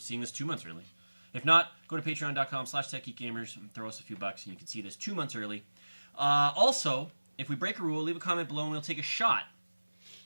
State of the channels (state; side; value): inverted; both; correlation -1.00